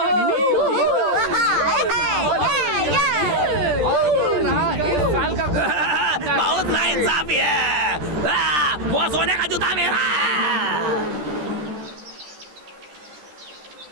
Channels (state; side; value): late; left; 13 ms